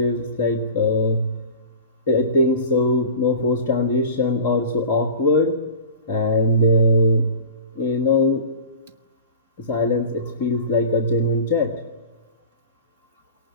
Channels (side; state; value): both; inverted; correlation -0.37